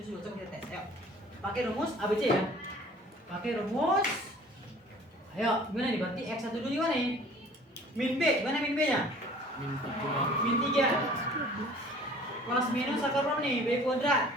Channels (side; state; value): both; normal; correlation 0.49